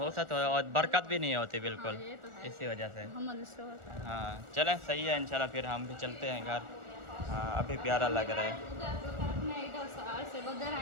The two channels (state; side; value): late; left; 1.4 ms